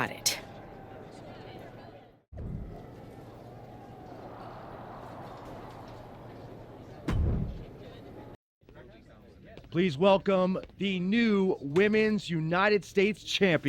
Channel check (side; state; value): both; identical; correlation 1.00